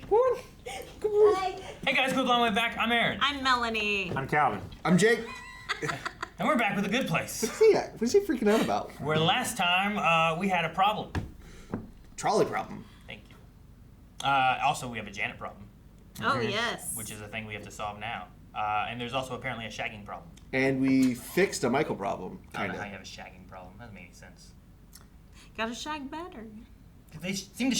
Hey guys, quick long way back. I'm Aaron. I'm Melanie. I'm Calvin. I'm Jake. And we're back with a good place. What is he freaking out about? Where last time we had a problem. Trolley problem. Thank you. Also, we have a Janet problem. Oh, yes. Which is a thing we have to solve now. And there's also apparently a shagging problem. And we fixed a Michael problem, I don't know kinda. how you have a shagging problem. That doesn't make any sense. Gotta shag better. They seem to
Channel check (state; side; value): identical; both; correlation 1.00